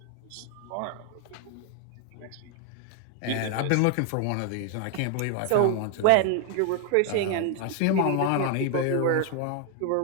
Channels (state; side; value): different; both; correlation 0.00